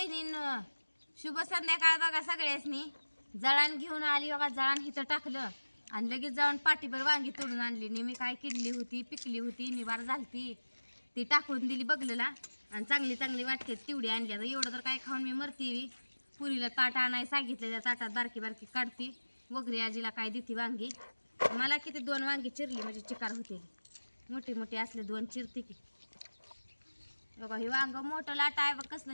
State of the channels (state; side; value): inverted; both; correlation -1.00